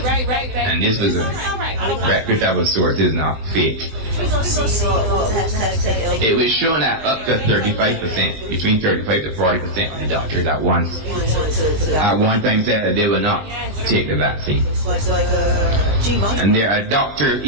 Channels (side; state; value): left; late; 19 ms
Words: and this was a reputable source, is not fake. It was shown that up to 35%, between 35 to 40% of the doctors at one time said that they will not take the vaccine. And there are doctors,